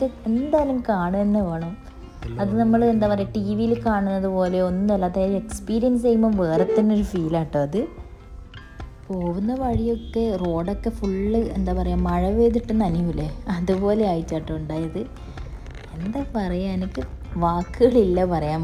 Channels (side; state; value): both; identical; correlation 1.00